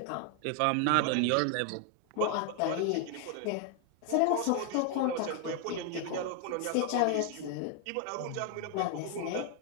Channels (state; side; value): different; both; correlation 0.00